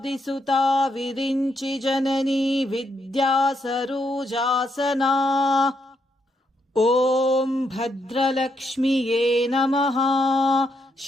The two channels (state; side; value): normal; both; correlation 0.78